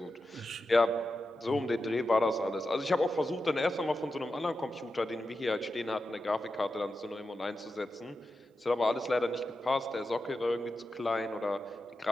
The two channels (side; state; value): both; normal; correlation 0.90